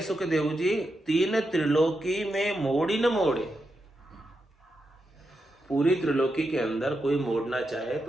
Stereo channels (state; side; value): normal; both; correlation 0.86